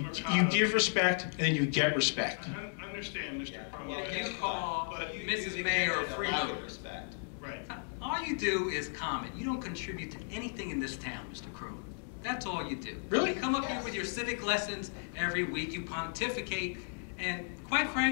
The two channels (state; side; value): silent; right; 55 dB below the other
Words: Mercado, give respect, and then you get respect. I understand, Mr. Cromwell. You call but Mrs. Mayor a freeloader. Respect. Right. All you do is comment. You don't contribute to anything in this town, Mr. Crowley. That's all you do. Really? You come up here with your civic lessons every week. You pontificate. And quite